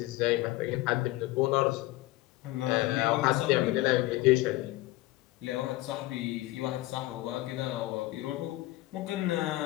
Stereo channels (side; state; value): right; quieter; 18.5 dB